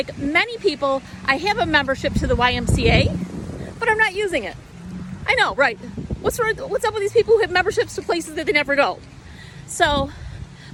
many people, I have a membership to the YMCA, but I'm not using it. I know, right? What's up with these people who have memberships to places that they never go? So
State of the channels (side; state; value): both; identical; correlation 1.00